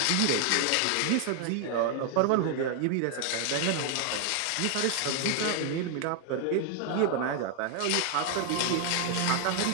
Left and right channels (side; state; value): both; different; correlation 0.00